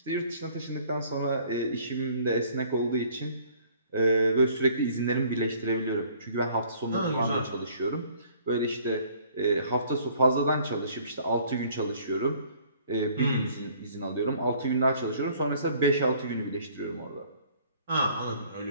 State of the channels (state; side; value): inverted; both; correlation -0.57